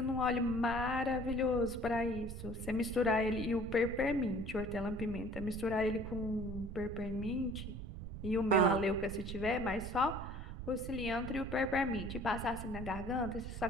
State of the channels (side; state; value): right; noise; rumble, 8 dB below the sound